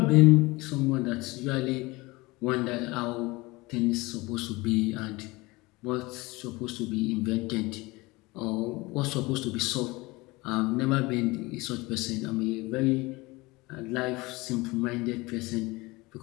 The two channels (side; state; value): right; quieter; 22.6 dB